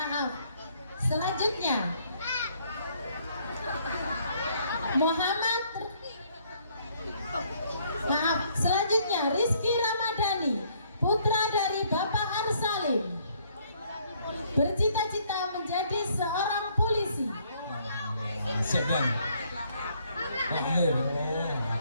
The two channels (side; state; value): both; inverted; correlation -0.66